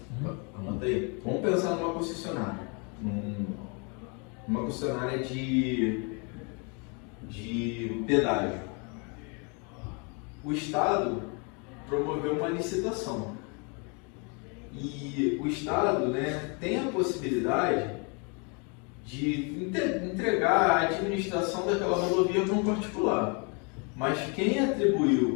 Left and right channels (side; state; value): right; quieter; 34.2 dB